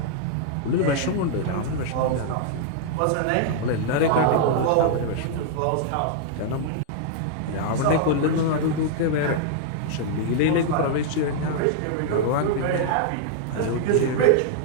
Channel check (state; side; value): different; both; correlation -0.01